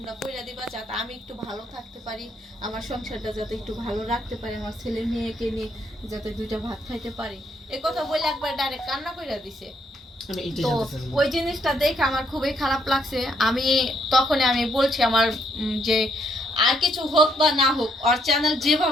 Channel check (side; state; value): both; normal; correlation 0.72